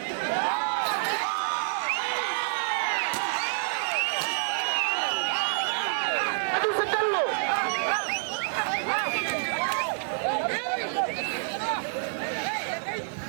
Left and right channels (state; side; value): silent; left; digital silence